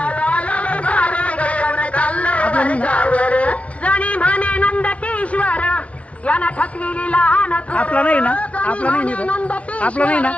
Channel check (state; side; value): late; right; 0.063 ms